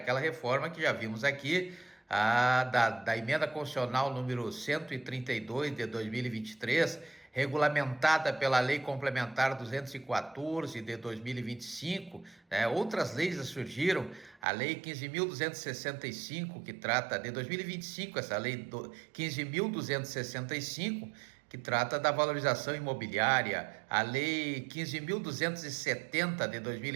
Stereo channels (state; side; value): drops out; left; at 14.4 s